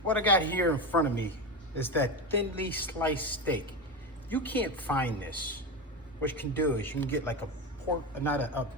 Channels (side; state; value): both; normal; correlation 0.18